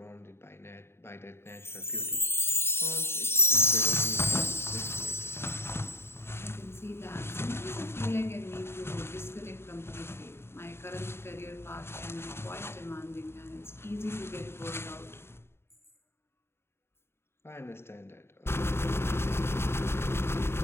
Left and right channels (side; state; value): right; late; 0.12 ms